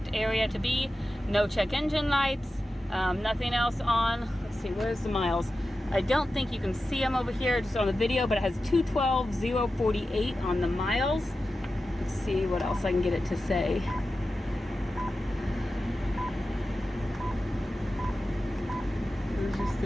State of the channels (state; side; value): normal; both; correlation 0.93